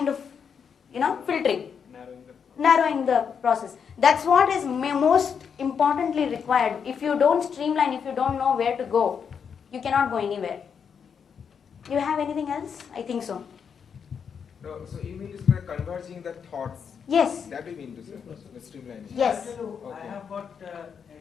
of, filtering, narrowing the process. That's what is most importantly required. If you don't streamline, if you don't know where to go, you cannot go anywhere. You have anything else? I think so. No, so you mean to say converging the thoughts? Yes. That you mean to say, the streamlining? Yes. I have got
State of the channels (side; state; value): right; quieter; 6.9 dB